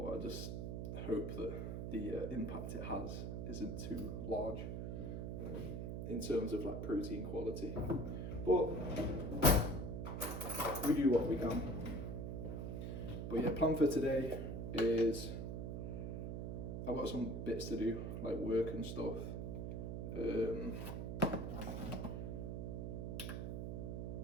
I just hope that the impact it has isn't too large in terms of like protein quality. But we do what we can. But yeah, plan for today is I've got some bits to do, like work and stuff.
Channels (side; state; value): right; noise; hum, 3 dB below the sound